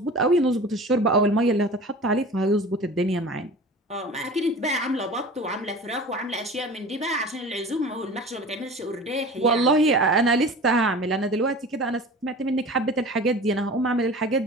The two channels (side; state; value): both; normal; correlation 0.38